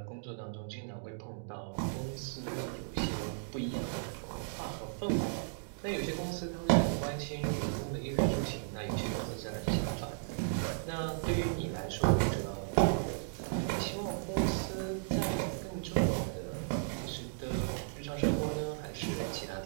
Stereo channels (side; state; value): left; silent; digital silence